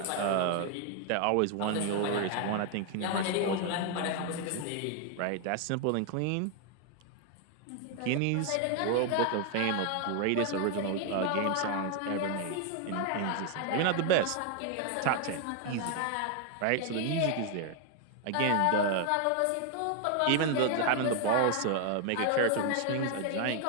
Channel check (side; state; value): both; different; correlation 0.00